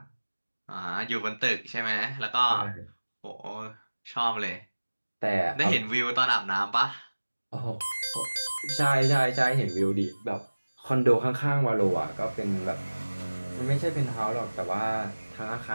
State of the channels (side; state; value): both; inverted; correlation -1.00